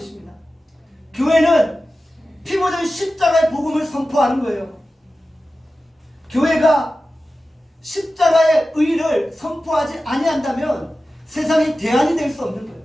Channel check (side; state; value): both; normal; correlation 0.94